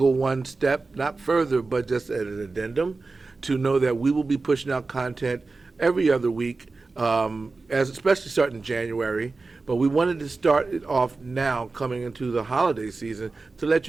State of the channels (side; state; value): left; quieter; 3.8 dB